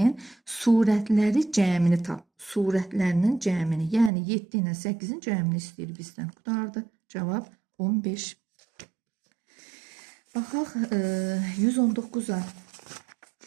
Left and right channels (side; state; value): left; drops out; at 4.1 s